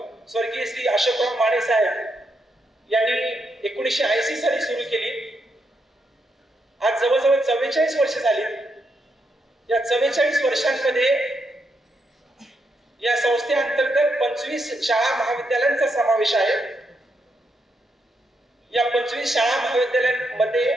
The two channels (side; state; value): both; normal; correlation 0.80